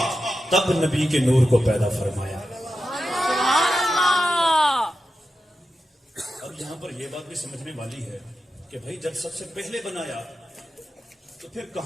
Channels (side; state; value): both; normal; correlation 0.90